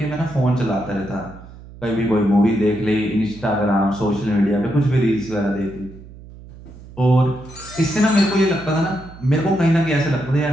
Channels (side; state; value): right; noise; hum, 18 dB below the sound